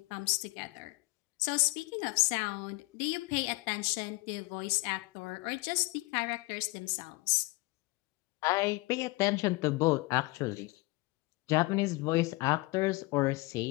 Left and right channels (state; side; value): quieter; right; 23.8 dB